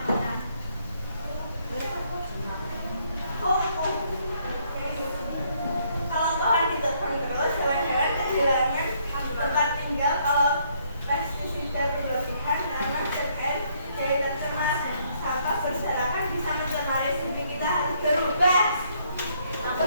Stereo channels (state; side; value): inverted; both; correlation -0.69